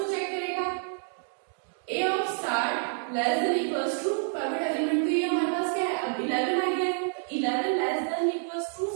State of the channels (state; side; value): silent; left; 59 dB below the other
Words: चेक करेगा A of star less than equals to private element, तो ये हमारे पास क्या है अब 11 आ गया है, तो 11 less than equals to